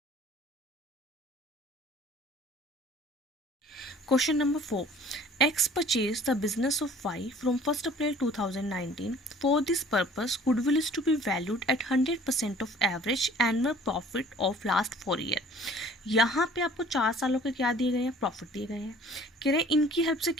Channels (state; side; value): normal; both; correlation 0.51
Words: Question number 4. X purchased the business of Y from 1st April 2019. For this purpose, goodwill is to be valued at 100% of average annual profit of last 4 years. यहाँ पे आपको 4 सालों के क्या दिए गए हैं, प्रॉफिट दिए गए हैं। कह रहे हैं इनकी हेल्प से